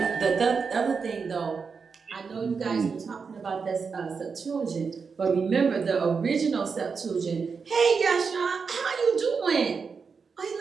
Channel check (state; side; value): quieter; left; 5.4 dB